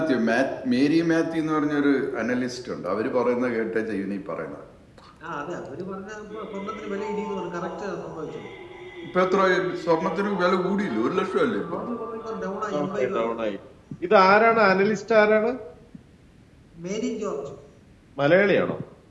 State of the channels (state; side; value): identical; both; correlation 1.00